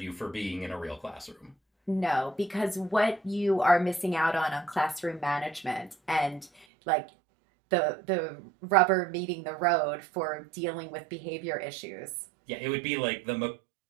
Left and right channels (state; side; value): drops out; left; at 6.7 s